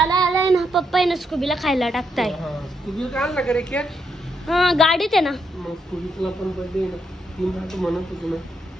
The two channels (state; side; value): normal; both; correlation 0.79